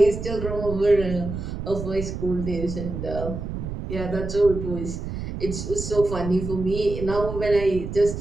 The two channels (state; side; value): noise; right; rumble, 6 dB below the sound